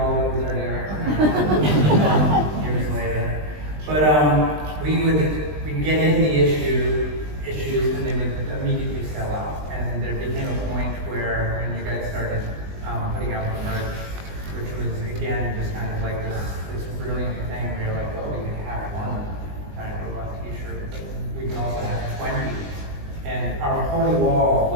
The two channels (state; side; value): late; left; 20 ms